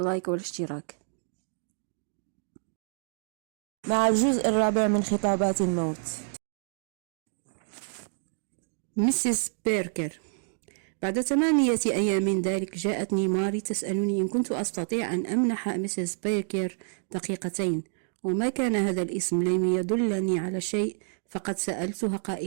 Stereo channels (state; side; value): silent; left; digital silence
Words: والاشتراك. مع الجزء الرابع من خطابات الموت. ميسيس بيركر: بعد 8 أيام من ذلك جاءتني ماري تسألني إن كنت أستطيع أن أمنح ميسيس بيركر دقيقتين، وما كان هذا الاسم لم يدلني على شيء، فقد سألتها